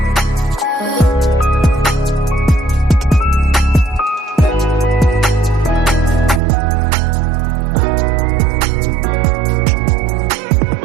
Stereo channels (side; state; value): left; drops out; at 6.4 s